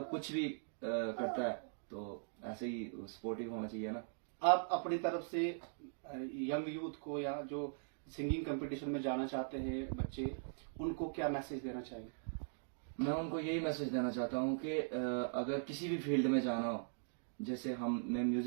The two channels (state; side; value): silent; left; digital silence